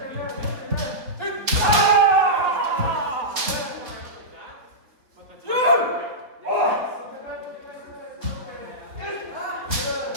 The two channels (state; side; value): late; left; 3.5 ms